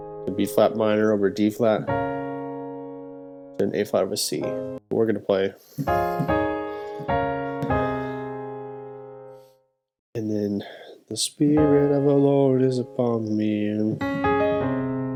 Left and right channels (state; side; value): identical; both; correlation 1.00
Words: B flat minor over D flat, and an A flat over C. We're going to play, and then the Spirit of the Lord is upon me. And